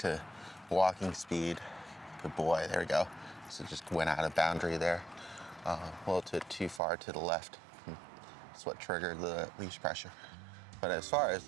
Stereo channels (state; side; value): drops out; left; at 6.8 s